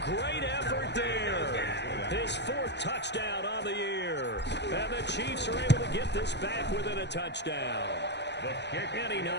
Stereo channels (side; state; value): right; late; 0.50 ms